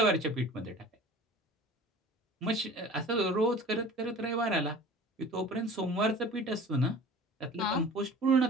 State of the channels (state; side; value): normal; both; correlation 0.42